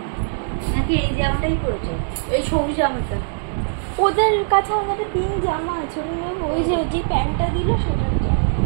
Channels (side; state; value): left; silent; 65 dB below the other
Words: নাকি এই জামাটাই পরেছো? এই সবুজ জামাটা ওদের কাছে আমাদের পিঙ্ক জামা আছে, ওটা নেবো। ওই যে প্যান্টটা দিল সেটা